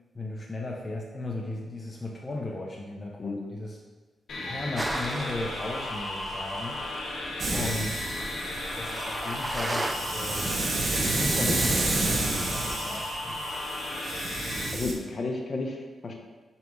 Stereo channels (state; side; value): normal; both; correlation 0.84